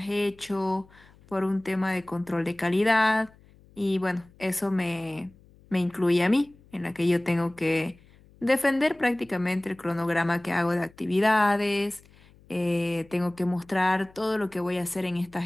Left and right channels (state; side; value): noise; left; hum, 27 dB below the sound